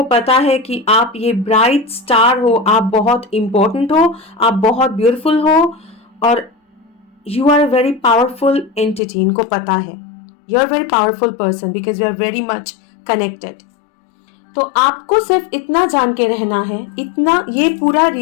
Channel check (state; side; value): drops out; right; at 9.0 s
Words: पता है कि आप ये ब्राइट स्टार हो, आप बहुत इंपॉर्टेंट हो, आप बहुत ब्यूटीफुल हो, और you are a very powerful entity. इनको पता है you are very powerful person because you are very much connected. तो आपको सिर्फ इतना जान के रहना है, इतना, ये पूरा